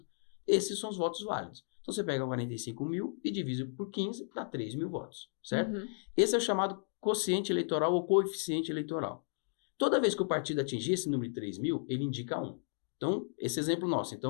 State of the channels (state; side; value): silent; right; digital silence